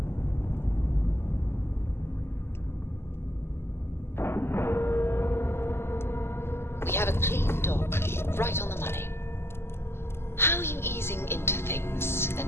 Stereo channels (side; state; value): right; late; 0.12 ms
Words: We have a clean dock, right on the money. How are you easing into things,